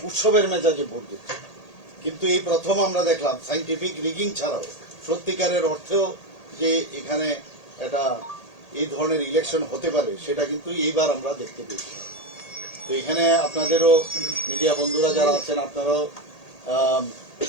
উৎসবের মেজাজে ভোট দিচ্ছে। কিন্তু এই প্রথম আমরা দেখলাম সাইন্টিফিক রিগিং ছাড়াও সত্যিকারের অর্থেও যে এখানে একটা এই ধরনের ইলেকশন হতে পারে সেটা কিন্তু এইবার আমরা দেখতে পেয়েছি। তো এখানে আপনাদেরও মিডিয়া বন্ধুরা যারা আছেন আপনারাও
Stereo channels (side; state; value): right; late; 1.8 ms